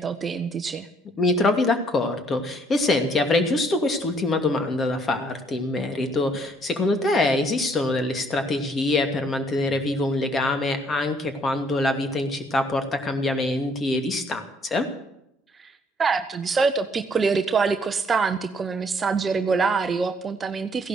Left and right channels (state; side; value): normal; both; correlation 0.65